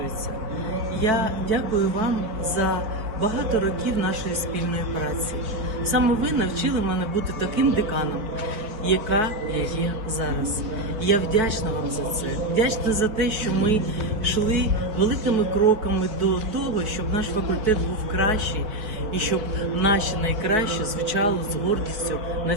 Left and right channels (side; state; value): left; late; 4.5 ms